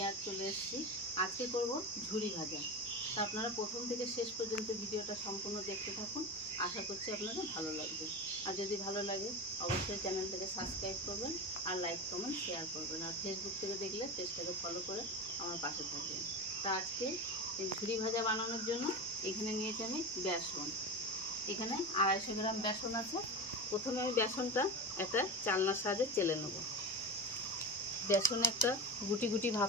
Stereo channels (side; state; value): both; normal; correlation 0.24